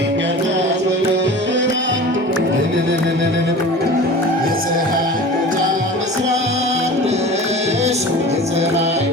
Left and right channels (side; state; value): both; normal; correlation 0.37